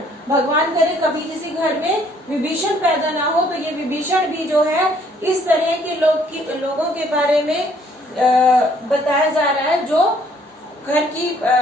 भगवान करे कभी किसी घर में विभीषण पैदा ना हो, तो ये विभीषण भी जो है इस तरह के लोगों के बारे में बताया जा रहा है जो घर की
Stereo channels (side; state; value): both; normal; correlation 0.63